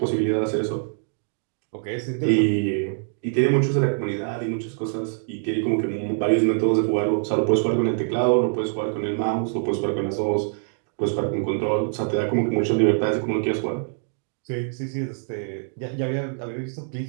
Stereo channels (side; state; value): left; silent; digital silence